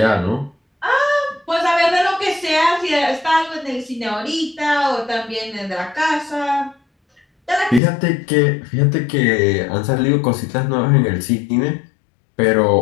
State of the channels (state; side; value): drops out; right; at 7.8 s